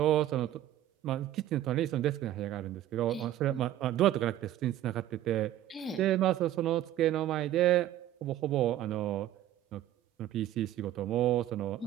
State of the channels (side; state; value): left; quieter; 13.0 dB